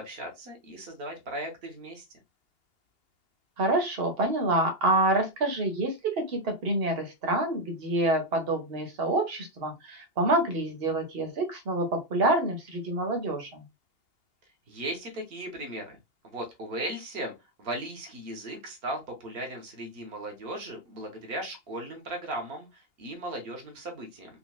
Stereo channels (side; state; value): left; late; 2.8 ms